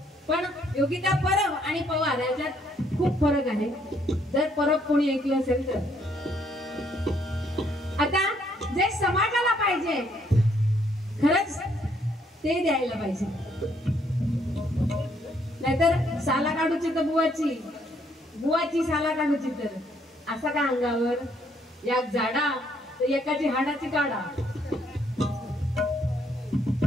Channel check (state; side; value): normal; both; correlation 0.69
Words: पण योगिता परब आणि पवार याच्यात खूप फरक आहे. जर परब कोणी ऐकलं असेल तर आता जे समाजाला पाहिजे खरंच ते द्यायला पाहिजे. नाहीतर साला काढूची तर बुवाची साला काढूची तर असा का अंगावर या झाडा तर एकाची हाडाची काढा.